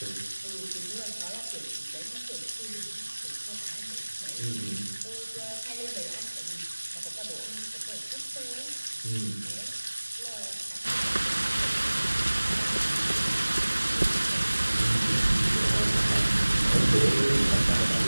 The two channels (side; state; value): both; inverted; correlation -1.00